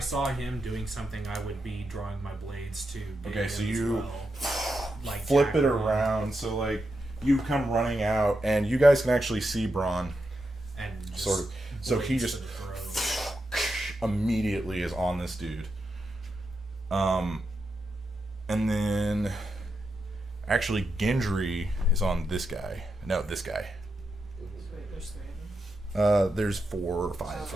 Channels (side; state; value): both; normal; correlation 0.86